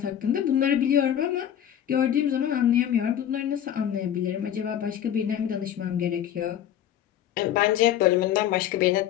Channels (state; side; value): quieter; right; 10.4 dB